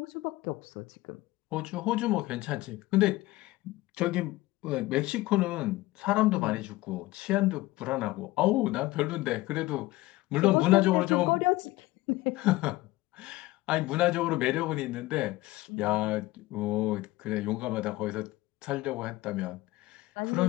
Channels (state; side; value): quieter; right; 18.9 dB